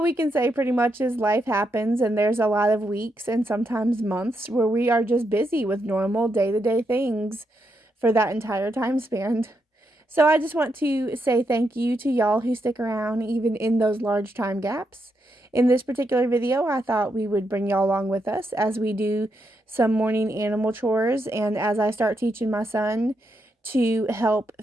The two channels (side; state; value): both; normal; correlation 0.82